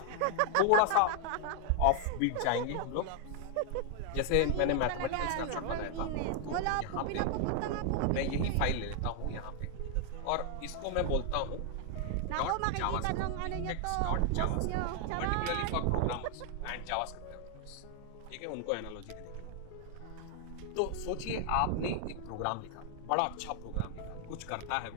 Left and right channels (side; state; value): both; different; correlation 0.00